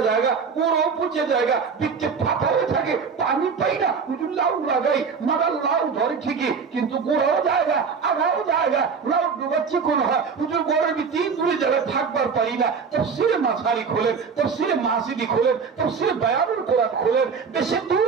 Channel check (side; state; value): left; quieter; 5.7 dB